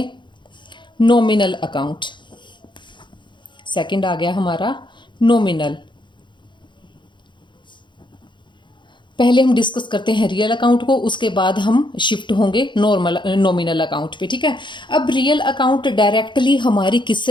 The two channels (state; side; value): late; right; 0.23 ms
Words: नॉमिनल अकाउंट। सेकंड आ गया हमारा नॉमिनल। पहले हम डिस्कस करते हैं रियल अकाउंट को, उसके बाद हम शिफ्ट होंगे नॉमिनल अकाउंट पे, ठीक है। अब रियल अकाउंट डायरेक्टली हमारी